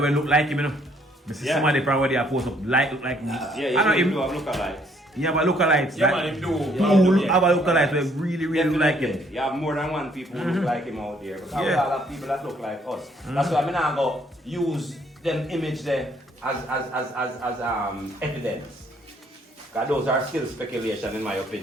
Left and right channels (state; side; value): normal; both; correlation 0.65